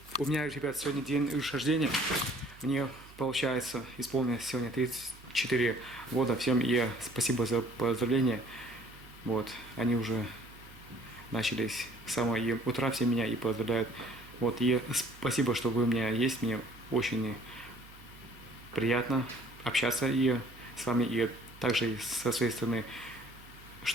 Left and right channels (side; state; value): right; noise; hum, 21 dB below the sound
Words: У меня, ребят, сегодня день рождения. Мне, получается, исполнилось сегодня 34 года. Всем и спасибо за поздравления. Вот, они уже начались с самого утра, все меня и поздравляют. Вот, и спасибо, что вы у меня есть. Мне очень приятно общаться и с вами, и также со своей стороны,